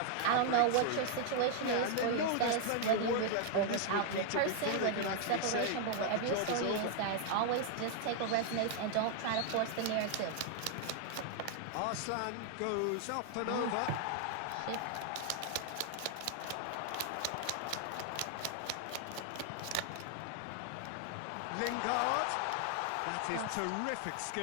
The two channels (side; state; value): both; different; correlation 0.00